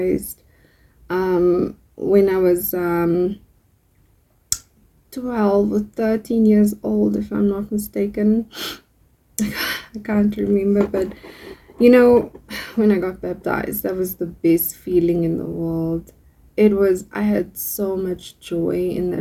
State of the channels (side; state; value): both; identical; correlation 1.00